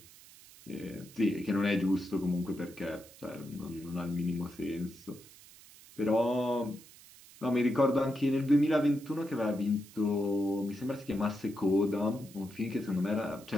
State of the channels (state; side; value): noise; right; hiss, 21 dB below the sound